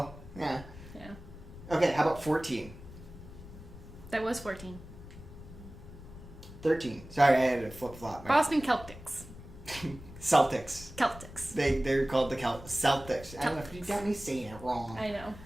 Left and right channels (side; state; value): left; noise; rumble, 16 dB below the sound